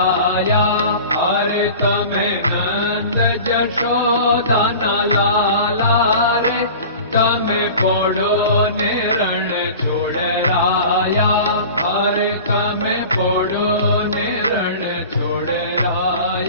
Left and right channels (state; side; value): inverted; both; correlation -0.38